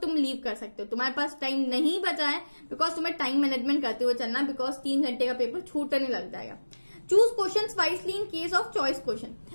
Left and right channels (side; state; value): both; inverted; correlation -1.00